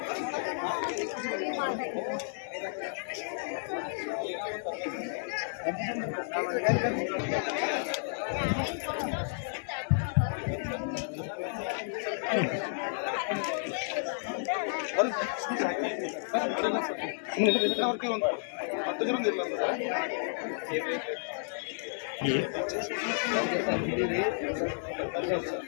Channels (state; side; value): silent; right; digital silence